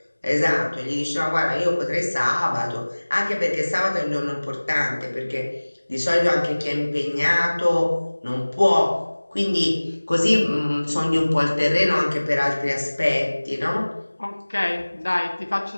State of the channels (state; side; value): inverted; both; correlation -1.00